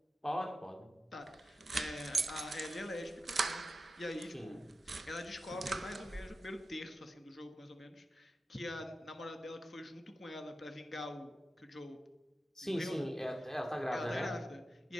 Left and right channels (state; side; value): normal; both; correlation 0.91